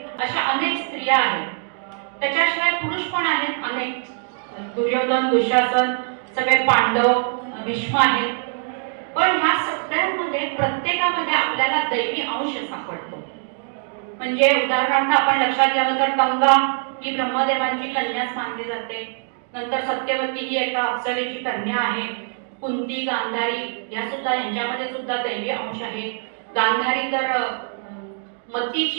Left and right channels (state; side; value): silent; left; 56 dB below the other